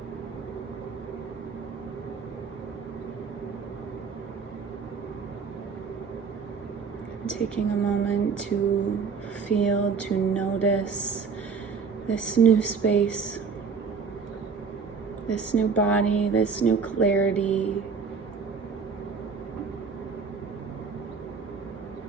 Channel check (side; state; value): left; quieter; 5.4 dB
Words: Taking a moment to feel, to notice this new space, this new body, this new clarity.